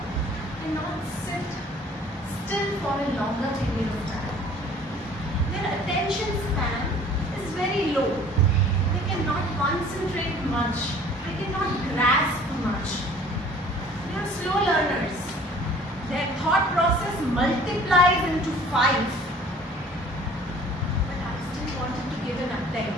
cannot sit still for a longer period of time. Their attention span is very low. They cannot concentrate much. They cannot grasp much. They are slow learners. Their thought process multiplies into 5. But I still wanted to give an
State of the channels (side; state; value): both; normal; correlation 0.50